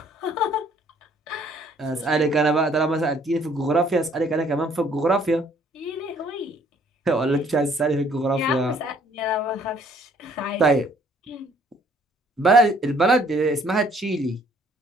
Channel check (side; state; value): both; normal; correlation 0.61